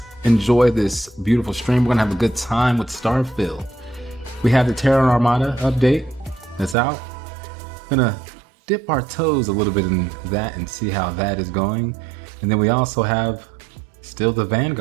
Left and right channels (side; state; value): left; drops out; at 6.8 s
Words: enjoy this beautiful stream. We're gonna have a good time with Starfield. We have the Terran Armada update that's out. Gonna dip our toes a little bit in that and see how that is going. And then we also have still the